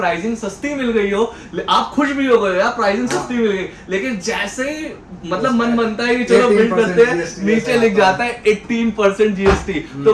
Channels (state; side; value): identical; both; correlation 1.00